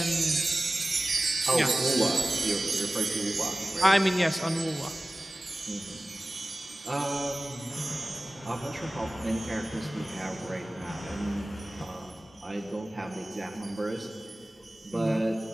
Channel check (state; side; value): normal; both; correlation 0.97